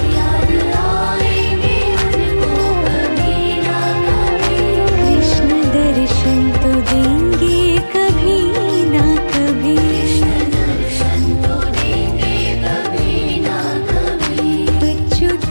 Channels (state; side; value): inverted; both; correlation -1.00